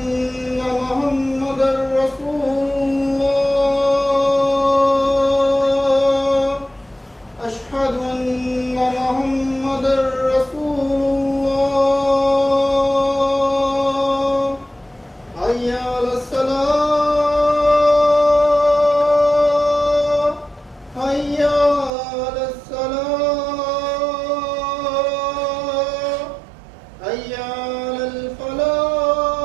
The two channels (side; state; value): left; drops out; at 21.9 s